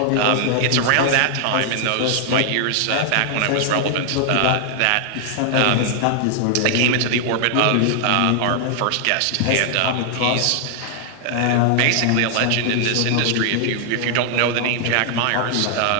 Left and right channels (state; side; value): different; both; correlation 0.00